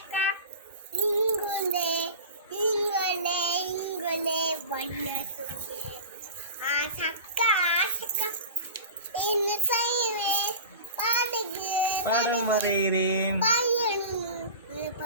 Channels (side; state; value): both; inverted; correlation -0.33